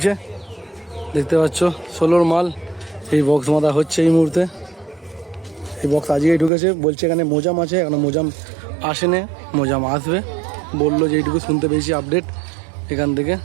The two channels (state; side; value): drops out; left; at 6.5 s